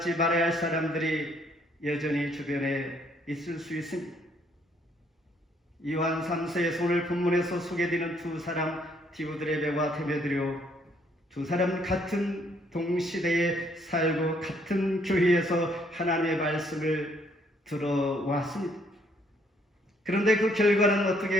말아야 할 사람들이 여전히 주변에 있을 수 있습니다. 요한 3세의 오늘 본문에서 소개되는 두 사람 디오드레베와 데메드리오, 두 사람 같은 동시대에 살고 같은 교회에서 하나님의 말씀을 들어왔습니다. 그런데 그 결과는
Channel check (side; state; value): both; normal; correlation 0.67